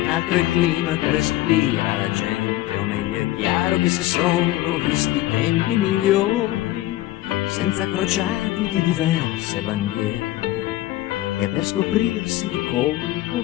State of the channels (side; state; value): right; quieter; 15.8 dB